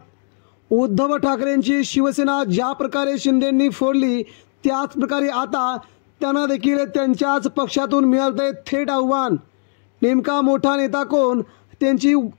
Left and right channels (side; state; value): right; silent; 55 dB below the other